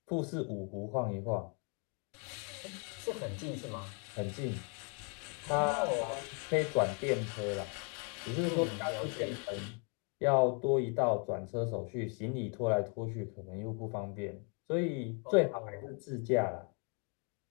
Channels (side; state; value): right; quieter; 38.3 dB